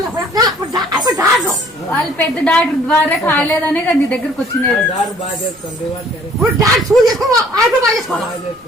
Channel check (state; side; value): noise; right; rumble, 29 dB below the sound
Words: వాళ్ళు పెద్ద డాక్టర్ ద్వారా కాలేదనే కదా నీ దగ్గరకు వచ్చినది.